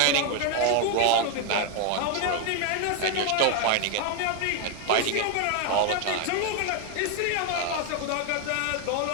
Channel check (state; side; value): different; both; correlation 0.01